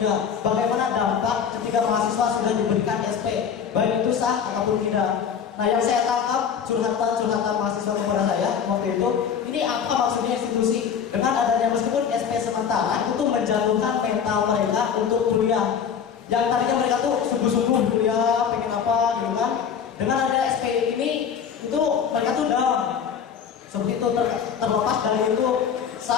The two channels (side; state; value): right; quieter; 7.5 dB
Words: Bagaimana dampak ketika mahasiswa sudah diberikan SP, baik itu sah ataupun tidak. Nah, yang saya tangkap curhatan mahasiswa kepada saya waktu itu, ini apa maksudnya institusi dengan adanya meskipun SP sementara itu menjatuhkan mental mereka untuk kuliah. Yang tadinya mereka tuh sungguh-sungguh kuliah, pengen apa gitu kan. Dengan adanya SP ini itu mereka tuh down. Seperti itu terlepas dari itu